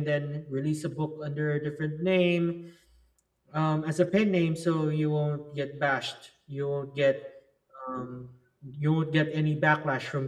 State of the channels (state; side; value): identical; both; correlation 1.00